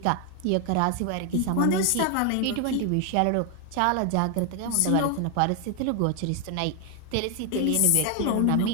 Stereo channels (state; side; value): different; both; correlation 0.01